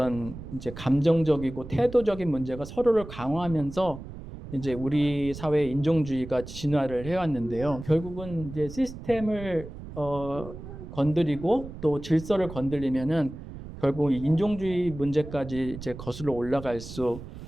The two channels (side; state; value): right; noise; rumble, 12 dB below the sound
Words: 이제 감정적이고 태도적인 문제가 서로를 강화하면서 이제 우리 사회의 인종주의가 진화를 해왔는데요. 결국은 이제 시스템을 건드리고 또 질서를 건드리면은 결국 인종주의 문제까지 이제 거슬러 올라갈 수